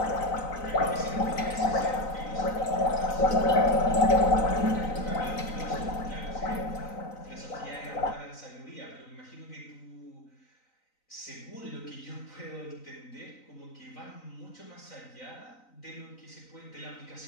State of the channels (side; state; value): right; late; 3.9 ms